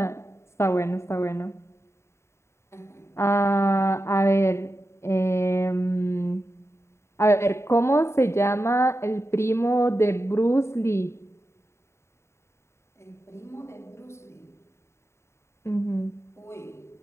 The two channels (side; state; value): right; late; 0.13 ms